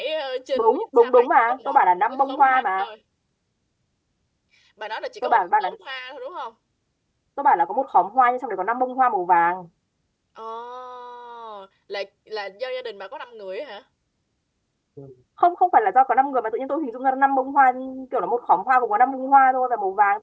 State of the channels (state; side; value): identical; both; correlation 1.00